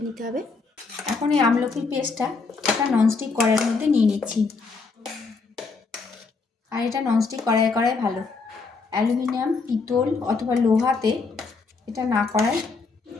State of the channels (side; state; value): right; quieter; 4.4 dB